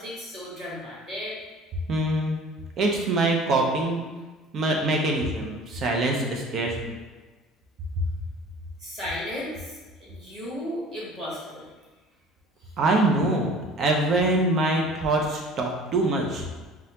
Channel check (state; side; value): normal; both; correlation 0.46